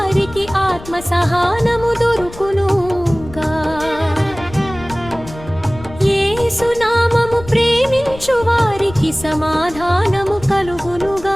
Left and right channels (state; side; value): noise; left; rumble, 16 dB below the sound